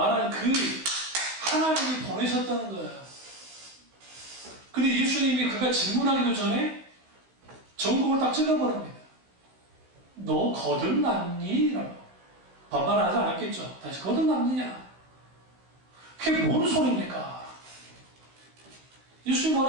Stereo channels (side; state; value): left; late; 16 ms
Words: 그 하나님이 보내셨다는 거예요. 근데 예수님이 그가 질문하기도 전에 전국을 딱 찔러버립니다. 너 거듭났니? 라고. 반말하지 않았겠죠. 다시 거듭났느냐? 그게 뭔 소리입니까? 예수님